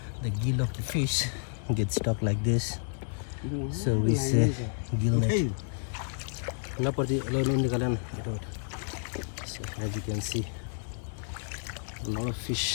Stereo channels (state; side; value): silent; right; digital silence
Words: the gill of the fish gets stuck like this. So we say gill net. So as you can see, a lot of